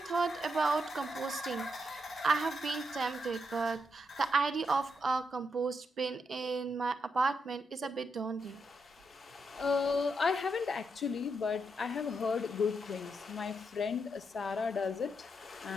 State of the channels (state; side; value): normal; both; correlation 0.81